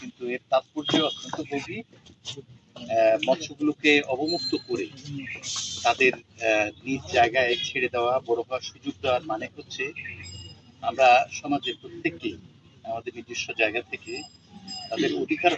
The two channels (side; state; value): both; identical; correlation 1.00